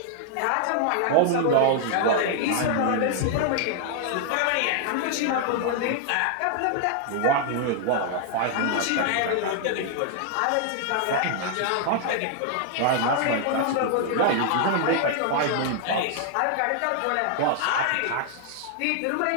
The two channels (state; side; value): different; both; correlation 0.00